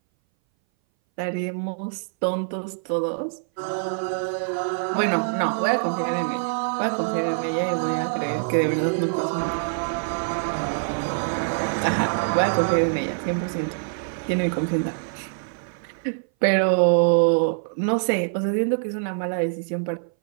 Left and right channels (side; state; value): left; silent; 59 dB below the other